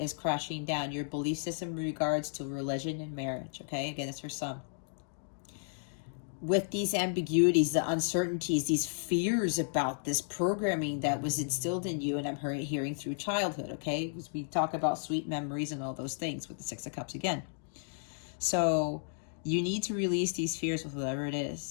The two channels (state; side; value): silent; right; digital silence